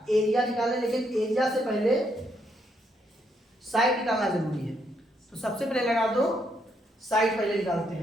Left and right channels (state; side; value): normal; both; correlation 0.75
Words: एरिया निकालें, लेकिन एरिया से पहले साइड निकालना जरूरी है। तो सबसे पहले लगा दो साइड, पहले निकालते